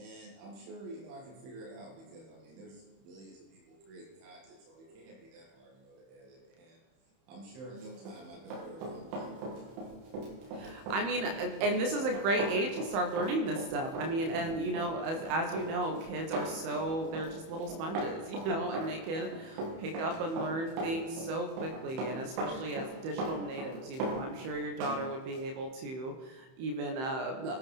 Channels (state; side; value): late; left; 31 ms